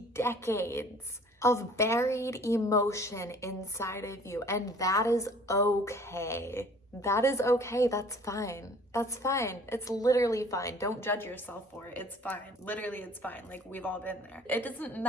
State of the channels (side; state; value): both; normal; correlation 0.51